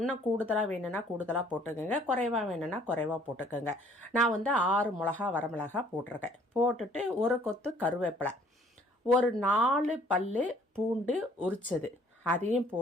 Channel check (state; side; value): normal; both; correlation 0.59